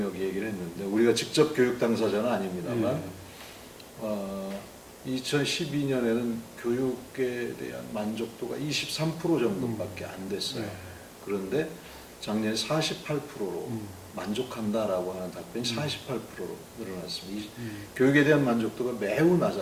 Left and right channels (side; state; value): both; identical; correlation 1.00